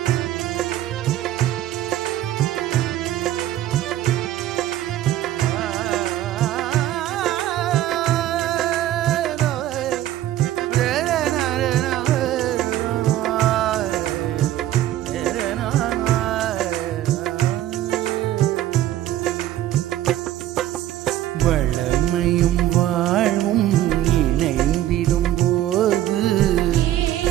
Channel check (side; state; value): left; quieter; 13.3 dB